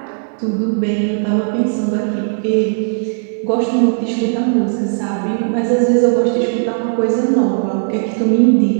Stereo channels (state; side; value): silent; left; digital silence